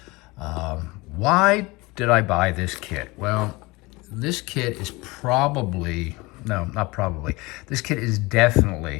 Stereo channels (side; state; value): right; quieter; 23.4 dB